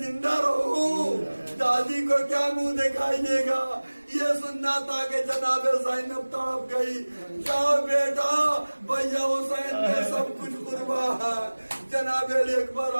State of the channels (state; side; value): inverted; both; correlation -1.00